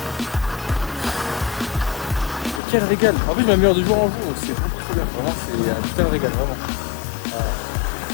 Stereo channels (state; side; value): drops out; right; at 2.6 s